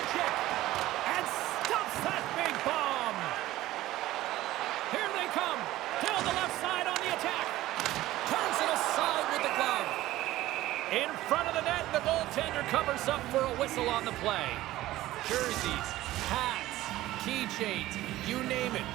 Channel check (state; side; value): quieter; left; 15.9 dB